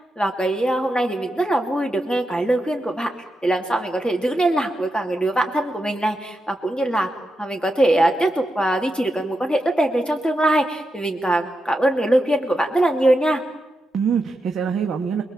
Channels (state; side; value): normal; both; correlation 0.87